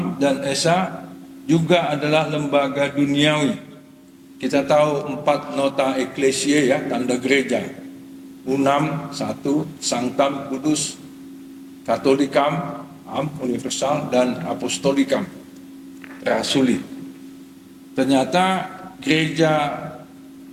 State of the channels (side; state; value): both; identical; correlation 1.00